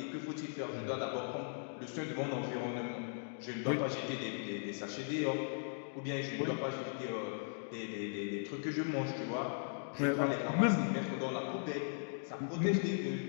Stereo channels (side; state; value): right; silent; digital silence